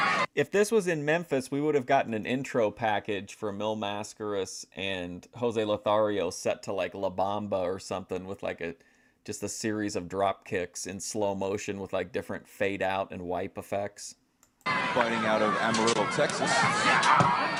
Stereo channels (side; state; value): both; identical; correlation 1.00